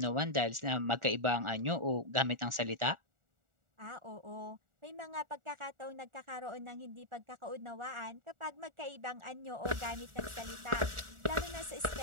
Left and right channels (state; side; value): late; left; 1.4 ms